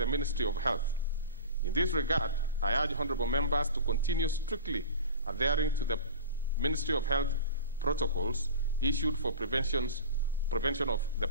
Ministry of Health. In this regard, I urge honourable members to continue strictly adhering to the Ministry of Health protocols issued for prevention of the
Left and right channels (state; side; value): inverted; both; correlation -0.33